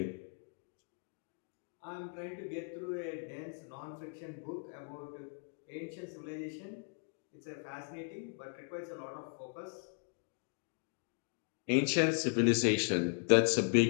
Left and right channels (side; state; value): right; silent; 53 dB below the other